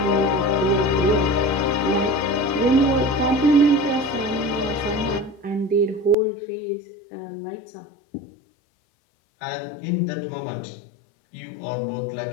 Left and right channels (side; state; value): right; drops out; at 6.2 s